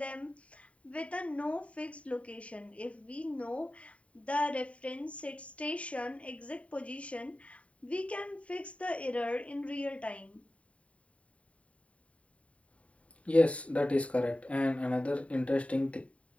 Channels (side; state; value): right; late; 0.065 ms